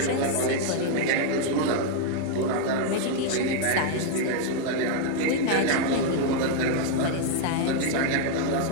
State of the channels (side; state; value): both; different; correlation 0.00